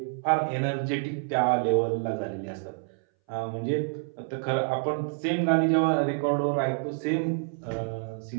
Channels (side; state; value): left; silent; 60 dB below the other